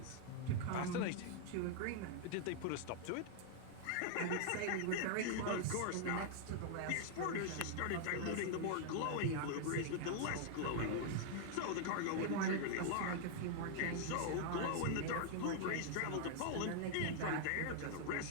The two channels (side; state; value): both; different; correlation 0.00